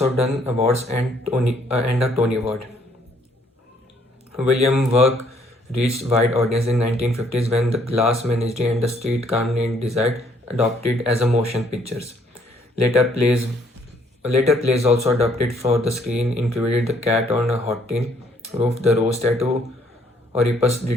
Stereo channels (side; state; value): both; normal; correlation 0.66